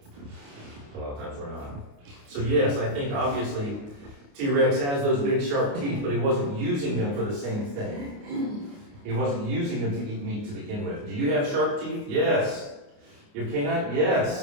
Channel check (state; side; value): late; left; 28 ms